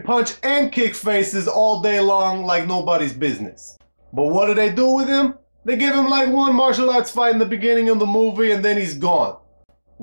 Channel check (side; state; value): both; inverted; correlation -1.00